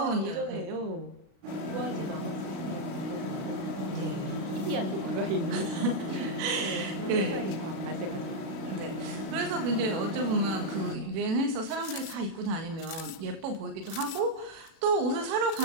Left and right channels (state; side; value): late; left; 36 ms